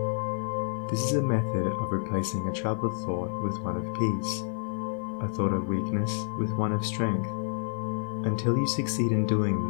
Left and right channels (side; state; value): right; silent; 59 dB below the other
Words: This is a method of replacing a troubled thought with one of peace, a thought of weakness with one of strength. Until you succeed in